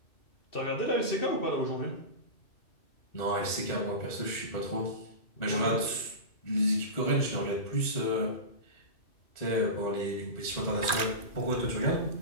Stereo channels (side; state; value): right; late; 2.4 ms